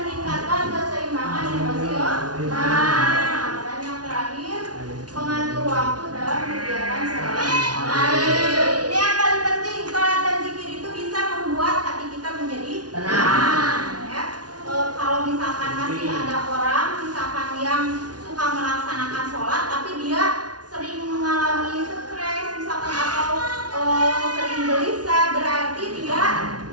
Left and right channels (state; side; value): late; left; 0.69 ms